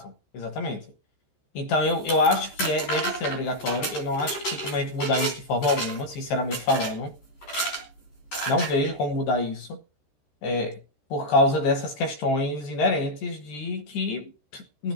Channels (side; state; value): right; late; 14 ms